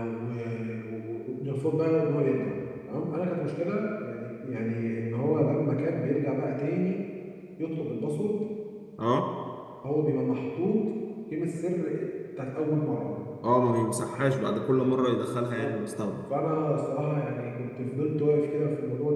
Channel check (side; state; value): both; identical; correlation 1.00